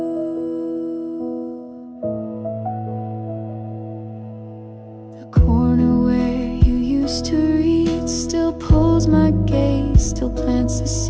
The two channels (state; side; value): identical; both; correlation 1.00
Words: The corner where you used to read still pulls my gaze, still plants a